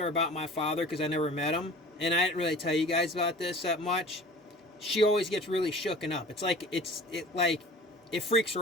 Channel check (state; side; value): normal; both; correlation 0.43